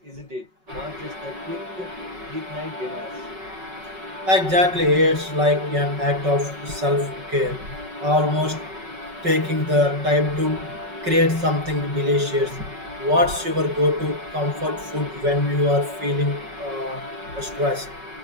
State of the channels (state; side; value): late; left; 5.4 ms